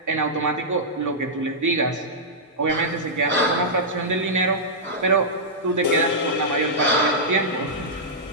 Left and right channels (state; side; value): normal; both; correlation -0.11